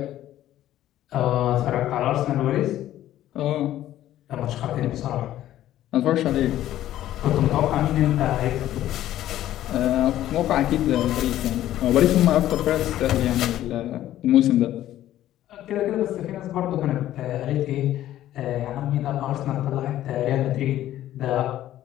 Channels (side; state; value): right; quieter; 13.2 dB